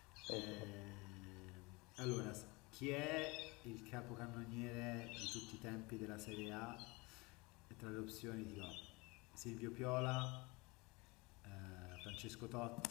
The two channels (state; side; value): quieter; right; 25.4 dB